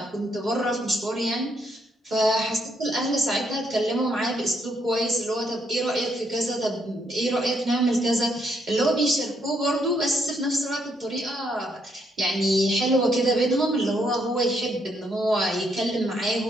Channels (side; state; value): both; normal; correlation 0.74